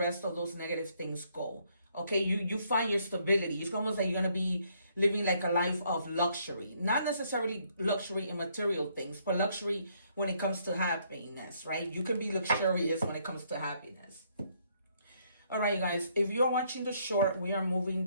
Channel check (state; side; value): inverted; both; correlation -0.69